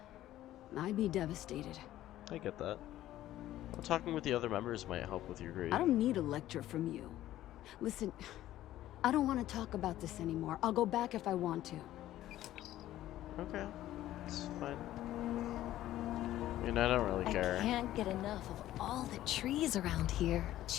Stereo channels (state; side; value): quieter; right; 13.9 dB